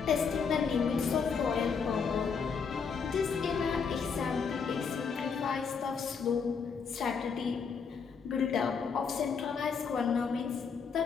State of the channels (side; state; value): right; quieter; 5.9 dB